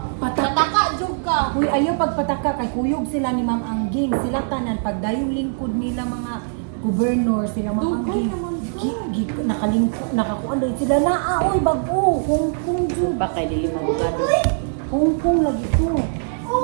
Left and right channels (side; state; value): left; silent; digital silence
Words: Pataka jud ka. Uy, ayaw pagpataka kay kuyog sila ni Ma'am Angging. Sila tanan pagdayong lingkod nila mga gobernur sila Ma'am Dugay Angging. naman Nakalingkod, nakakuan dahil sila na oy bago. Hong Kong jud. Baka dili magugado. Hong Kong lagi to.